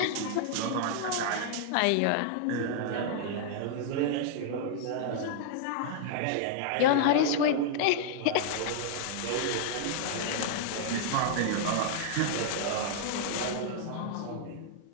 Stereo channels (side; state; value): both; different; correlation -0.01